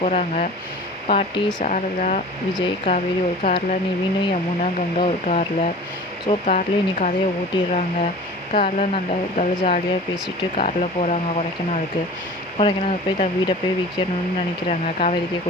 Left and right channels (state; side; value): normal; both; correlation 0.40